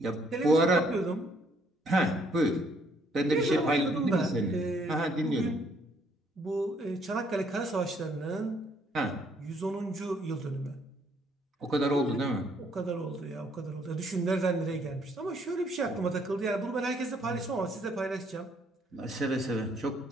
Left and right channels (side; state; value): both; normal; correlation 0.67